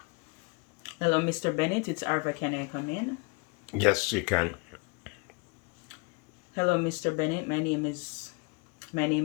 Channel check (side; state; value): right; quieter; 30.8 dB